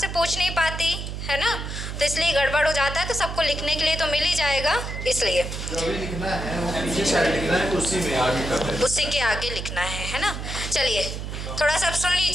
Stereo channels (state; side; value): noise; right; hum, 6 dB below the sound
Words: पूछ नहीं पाती, है ना, तो इसलिए गड़बड़ हो जाता है, तो सबको लिखने के लिए तो मिल ही जाएगा, इसलिए लिखना है वो पीछे साइड लिखना है, उसी में आगे करना है, उसी के आगे लिखना है ना। चलिए थोड़ा सा सुन